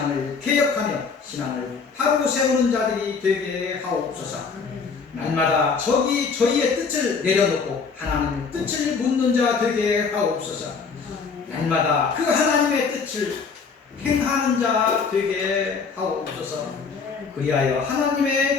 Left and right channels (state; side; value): quieter; right; 5.3 dB